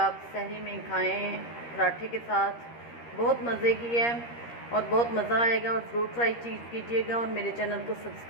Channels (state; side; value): late; right; 13 ms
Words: सहरी में खाएं पराठे के साथ, बहुत मज़े की है और बहुत मज़ा आएगा। और ज़रूर ट्राई कीजिएगा और मेरे चैनल को